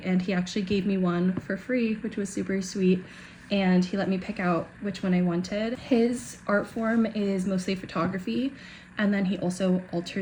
and he actually gave me one for free, which was super sweet. And he let me pick out which one I wanted. His art form is mostly photography, and then he also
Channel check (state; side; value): identical; both; correlation 1.00